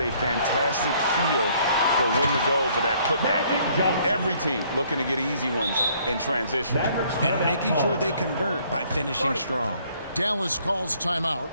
fantastic feel for when to go for that putback. Every team looking to get easy ones in transition. And making sure they convert by finishing strong. Dallas calls timeout.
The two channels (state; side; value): inverted; both; correlation -0.63